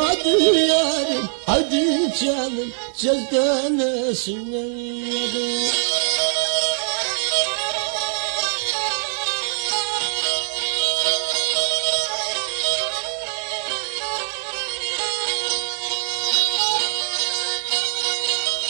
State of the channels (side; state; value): left; silent; digital silence